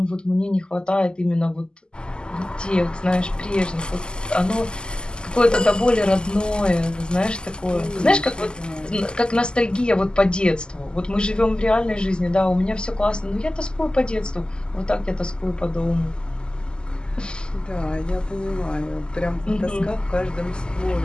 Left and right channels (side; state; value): right; late; 0.047 ms